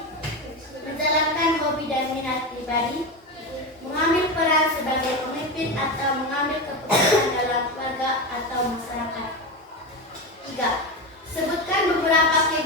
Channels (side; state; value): both; normal; correlation 0.18